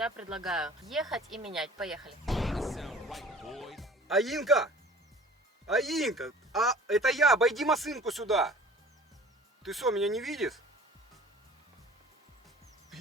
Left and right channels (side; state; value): both; normal; correlation 0.46